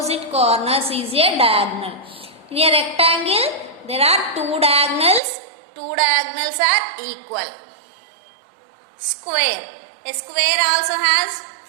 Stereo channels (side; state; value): left; drops out; at 5.2 s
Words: corners is a diagonal. In a rectangle, there are 2 diagonals. 2 diagonals are equal. Square. A square also has